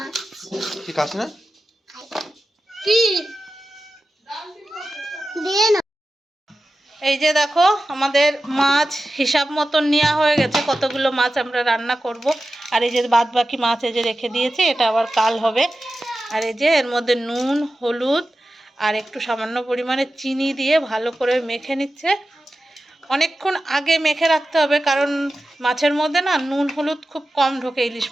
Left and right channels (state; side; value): normal; both; correlation 0.93